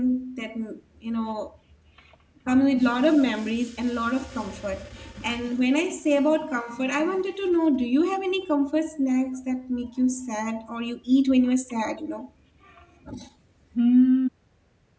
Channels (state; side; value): identical; both; correlation 1.00